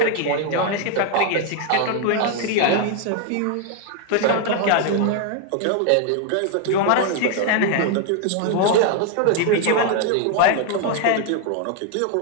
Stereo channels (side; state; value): both; different; correlation 0.00